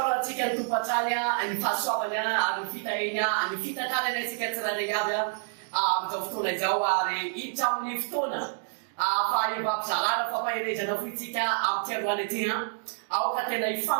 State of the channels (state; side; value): silent; left; digital silence